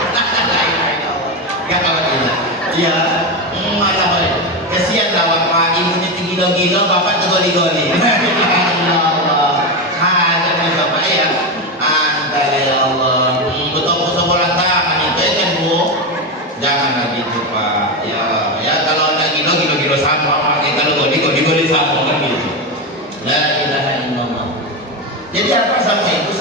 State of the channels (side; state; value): both; normal; correlation 0.14